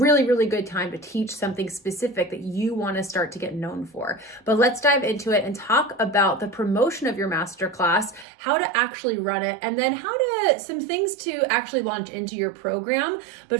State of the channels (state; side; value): drops out; left; at 8.2 s